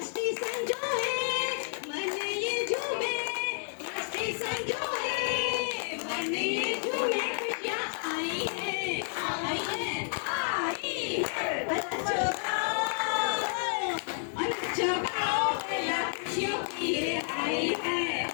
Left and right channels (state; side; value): silent; right; 57 dB below the other